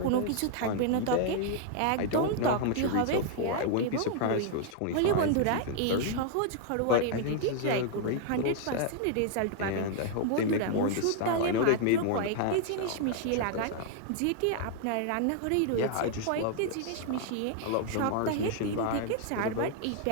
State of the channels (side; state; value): both; different; correlation 0.00